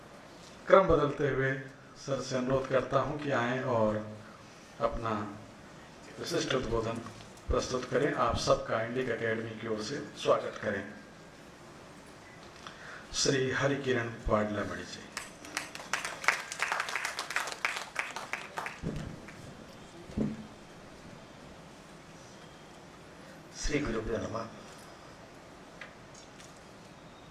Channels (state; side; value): identical; both; correlation 1.00